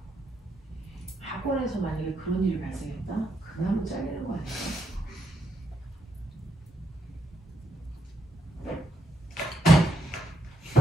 학원에서 만약에 그런 일이 발생했다? 그나마 잘리는 거 아니야?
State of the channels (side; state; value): both; normal; correlation 0.79